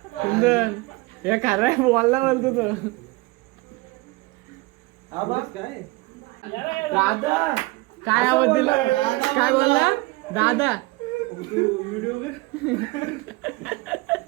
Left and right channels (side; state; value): left; quieter; 23.0 dB